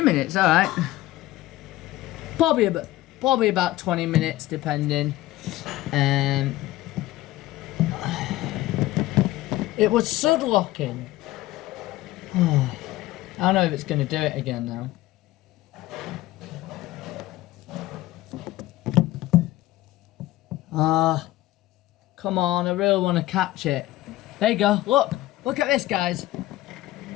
minutes. All right, probably about 20 minutes, depending. It was sudlocking. I don't know if it's gonna do it again now. Come on, I really want to catch it. There you go, look at this, guys.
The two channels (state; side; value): quieter; right; 16.7 dB